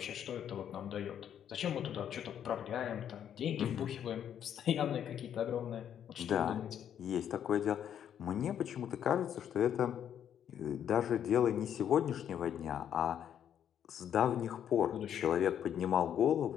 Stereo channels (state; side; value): quieter; right; 9.4 dB